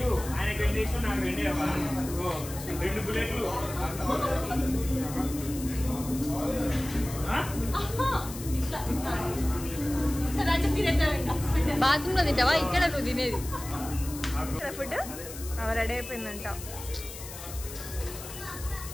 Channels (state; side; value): noise; left; hiss, 12 dB below the sound